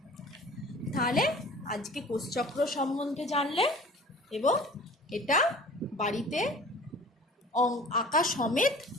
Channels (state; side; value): normal; both; correlation 0.45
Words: তাহলে আজকে কোষচক্র সম্বন্ধে জানলে, এবং এটা বাড়িতে আঁকা সমেত